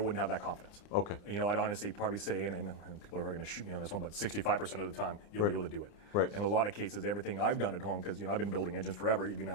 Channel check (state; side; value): late; right; 29 ms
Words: have that confidence. Okay. I'd honestly probably say, and people are going to shoot me on this one, but 65% of the time, you'll be able to do it. Right. In a lot of cases, everything I've done at home, because I've been building engines forever, even